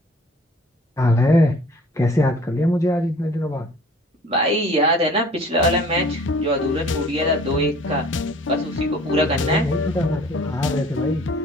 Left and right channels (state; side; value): normal; both; correlation 0.50